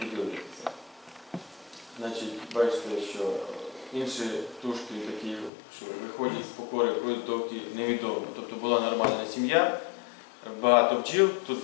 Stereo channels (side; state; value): right; drops out; at 5.5 s